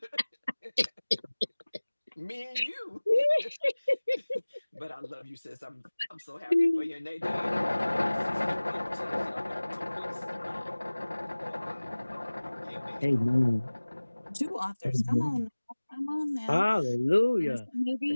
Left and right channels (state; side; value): inverted; both; correlation -1.00